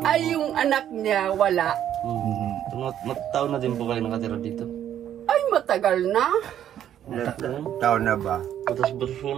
yung anak niya, wala. Mataon na din po kayo nakatira dito. Ay, matagal na. Taon na ba? Butas-butas po,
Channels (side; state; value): left; quieter; 10.6 dB